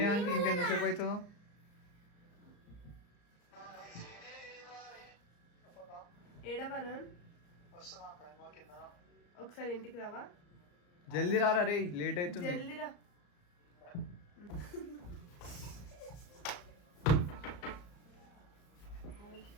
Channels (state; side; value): late; right; 34 ms